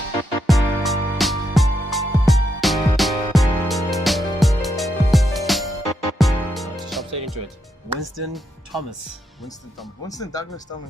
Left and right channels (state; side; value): normal; both; correlation 0.81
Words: Winston Thomas. Winston Douglas